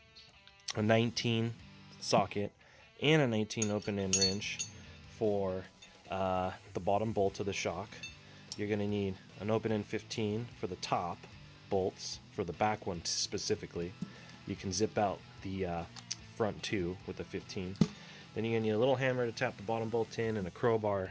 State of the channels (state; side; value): identical; both; correlation 1.00